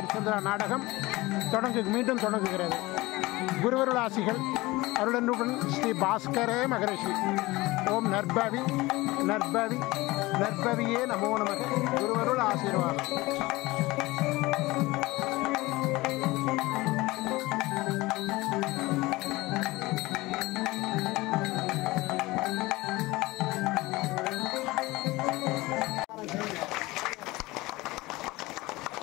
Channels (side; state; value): right; quieter; 20.6 dB